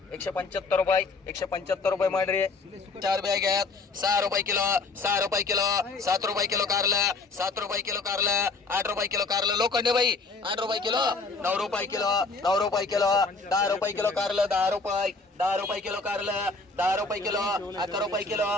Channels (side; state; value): right; quieter; 3.9 dB